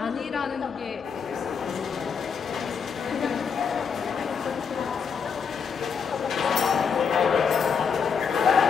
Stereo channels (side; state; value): right; quieter; 6.3 dB